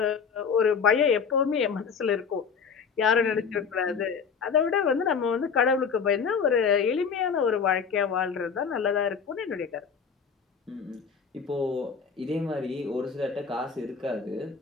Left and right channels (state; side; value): quieter; right; 6.1 dB